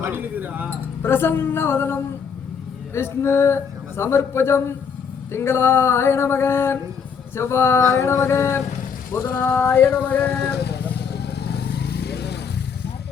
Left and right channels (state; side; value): quieter; right; 6.5 dB